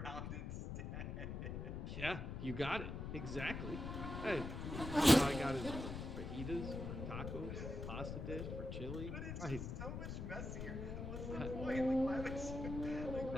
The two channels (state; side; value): noise; left; rumble, 5 dB below the sound